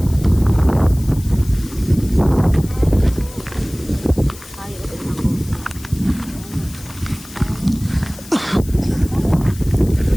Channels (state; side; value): noise; left; hiss, 18 dB below the sound